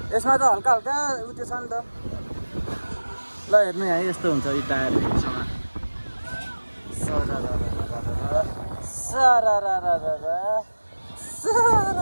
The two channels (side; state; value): both; inverted; correlation -1.00